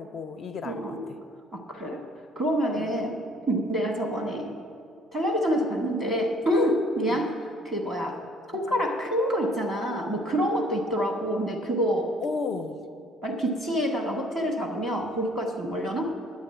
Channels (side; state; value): both; normal; correlation 0.57